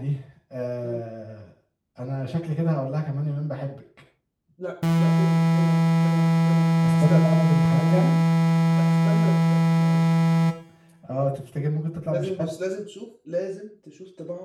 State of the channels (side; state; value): both; identical; correlation 1.00